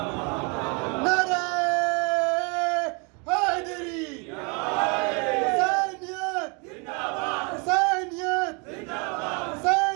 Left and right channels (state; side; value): quieter; left; 33.3 dB